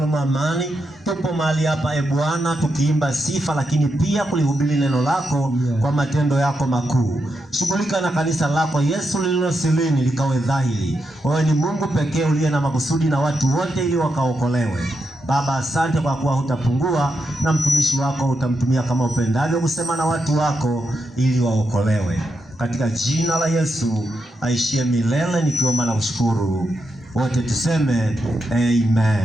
wa amani, tupo mahali hapa Bwana tukiimba sifa, lakini pia kulihubiri neno lako kwa matendo yako makuu. Shughulika na kanisa lako Yesu lililo silini likawe dhahiri. Wewe ni Mungu pekee uliye na makusudi na watu wote ili wakaokolewe. Baba, asante kwa kuwa hutapungua na mtumishi wako utamtumia kama upendavyo kusema na watu wako ili waokolewe. Katika jina la Yesu aishie milele nikiomba na kushukuru. Wote tuseme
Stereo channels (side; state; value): both; normal; correlation 0.85